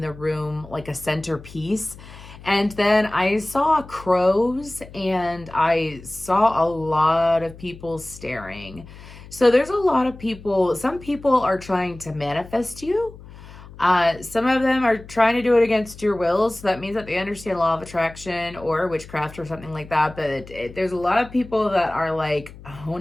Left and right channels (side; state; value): left; noise; hum, 18 dB below the sound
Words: room like a centerpiece. And then I saw crows and I saw a lot of people staring. So there's a lot of people, some people are trying to manifest you. Some of them are trying to do it against your will, so that means that they understand law of attraction or witchcraft or something like that. But there's a lot of people that are like